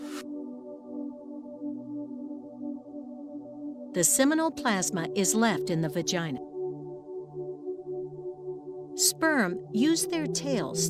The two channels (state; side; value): identical; both; correlation 1.00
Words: The seminal plasma is left in the vagina. Sperm use their tails